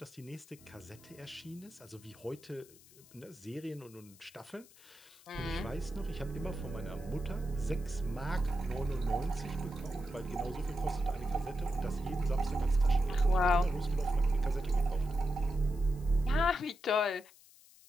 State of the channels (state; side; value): noise; left; hiss, 24 dB below the sound